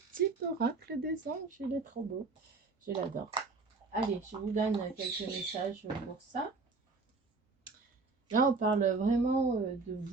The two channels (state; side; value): quieter; left; 4.0 dB